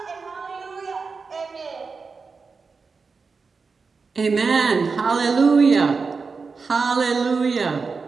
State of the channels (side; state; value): left; quieter; 4.7 dB